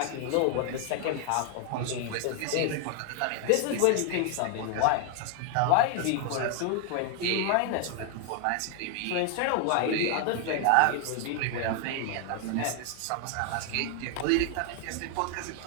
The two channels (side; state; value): both; different; correlation 0.00